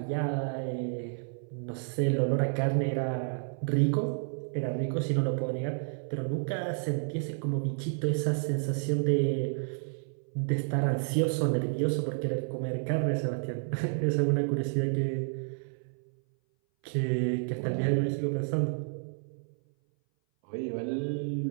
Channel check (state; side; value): silent; left; 57 dB below the other